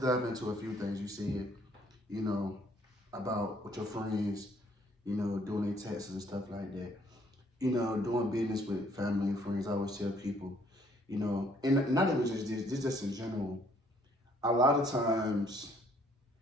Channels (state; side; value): normal; both; correlation 0.63